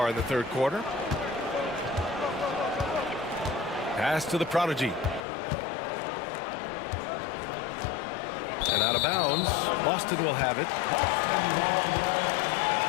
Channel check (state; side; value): drops out; right; at 5.2 s